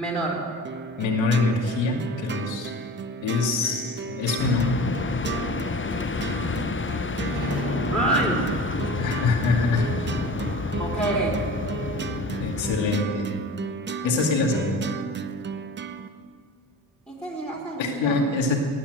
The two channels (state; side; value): normal; both; correlation 0.38